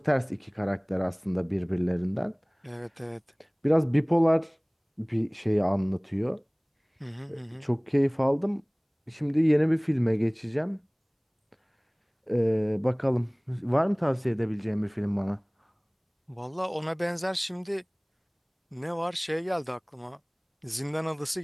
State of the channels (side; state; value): both; identical; correlation 1.00